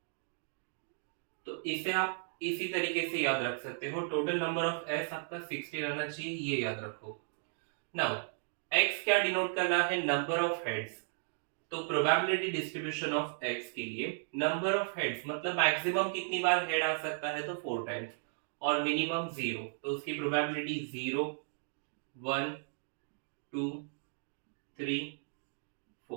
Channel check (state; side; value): silent; left; digital silence